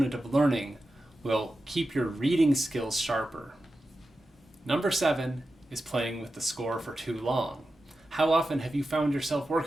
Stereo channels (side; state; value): both; normal; correlation 0.92